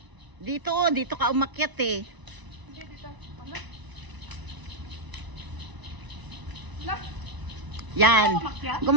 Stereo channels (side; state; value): left; late; 1.0 ms